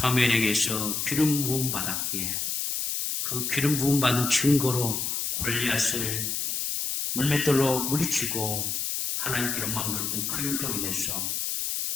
기름 부음 받았기에 그 기름 부음 받은 증거로 골리앗을 물맷돌로 물리치고 하나님께 영광 돌렸던 그 일로 인해서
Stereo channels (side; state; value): left; noise; hiss, 1 dB below the sound